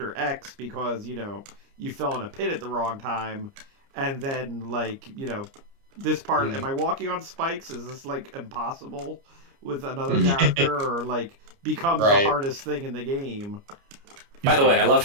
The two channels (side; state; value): left; late; 29 ms